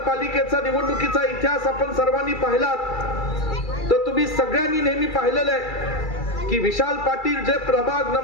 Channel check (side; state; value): right; late; 2.3 ms